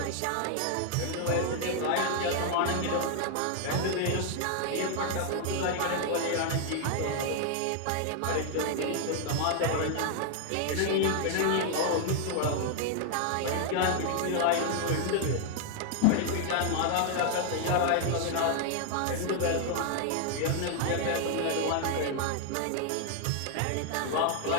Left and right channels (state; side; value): different; both; correlation 0.00